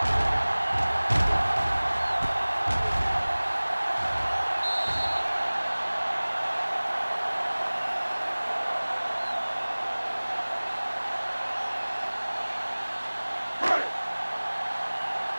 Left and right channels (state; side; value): inverted; both; correlation -1.00